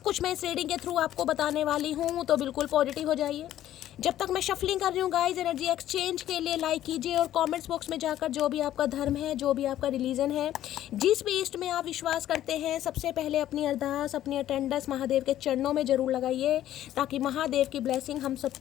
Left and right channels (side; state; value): right; quieter; 12.6 dB